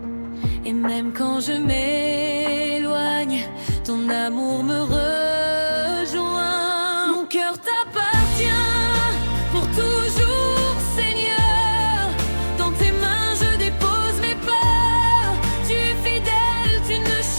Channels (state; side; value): inverted; both; correlation -1.00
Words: et même quand je m'éloigne, ton amour me rejoint. Mon cœur t'appartient pour toujours, Seigneur. Dans tes mains je dépose mes peurs. Tu es fidèle, tu ne